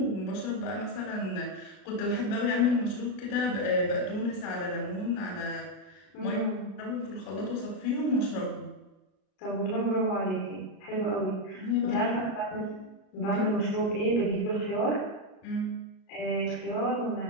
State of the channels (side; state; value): right; late; 35 ms